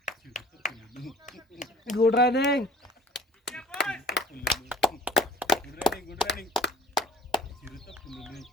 Good running. Good running. చిరుత పుల్లులు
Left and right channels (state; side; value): normal; both; correlation 0.49